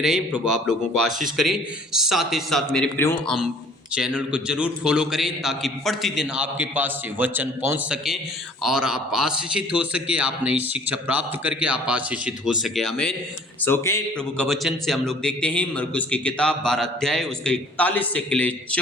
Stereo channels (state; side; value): normal; both; correlation 0.53